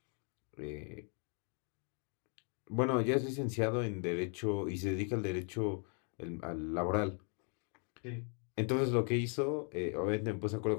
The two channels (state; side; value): quieter; right; 37.7 dB